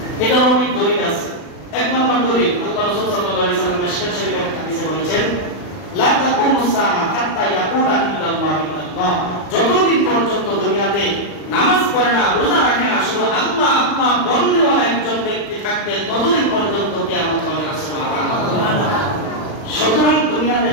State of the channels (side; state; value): right; late; 39 ms